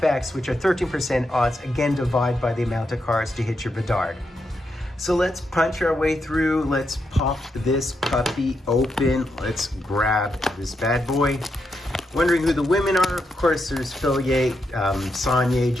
which are 13% odds, again, divide by the amount of cards to hit your Bedard. So let's punch our way through. Let's pop this puppy open. Let's grab this bad boy. Wondering who the women are? Of course, there's Phil Yates, Sonia,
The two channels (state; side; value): normal; both; correlation 0.83